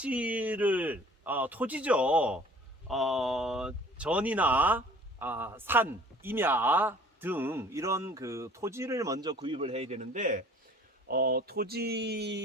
토지죠. 전이나 산, 임야 등 이런 그 토지를 먼저 구입을 해야 되는데,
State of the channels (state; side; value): normal; both; correlation 0.50